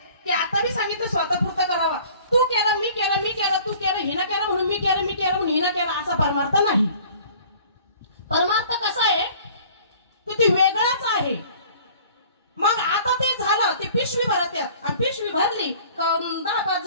की आता मी सांगितलं स्वतःपुरतं करावा. तू केलं मी केलं, मी केलं तू केलं, हिनं केलं म्हणून मी केलं, मी केलं म्हणून हिनं केलं, असा परमार्थ नाही. परमार्थ कसा आहे की ते वेगळाच आहे. मग आता ते झालं, ते पिशवी भरत आणि पिशवी भरली 10-5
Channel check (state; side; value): inverted; both; correlation -0.50